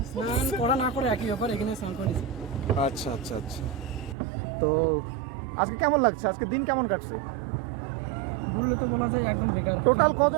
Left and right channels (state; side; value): drops out; left; at 4.2 s